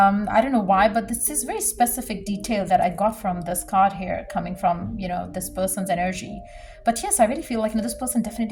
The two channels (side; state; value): both; identical; correlation 1.00